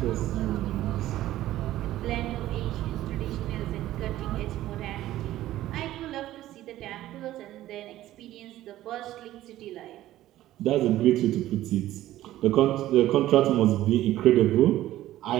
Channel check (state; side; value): quieter; left; 14.4 dB